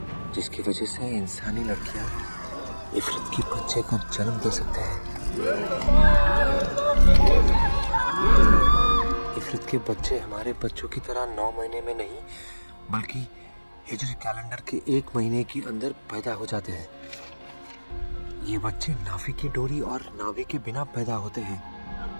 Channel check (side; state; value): both; inverted; correlation -1.00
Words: जिसकी वजह से इंसानी लड़कियां इफरत के बच्चे को जन्म दे सकते हैं। इफरत के बच्चे हमारे बच्चों की तरह 9 महीने में नहीं, बल्कि हिजरी कैलेंडर के 1 महीने के अंदर पैदा हो जाते हैं। ये बच्चे नाभि की डोरी और नाभि के बिना पैदा होते हैं।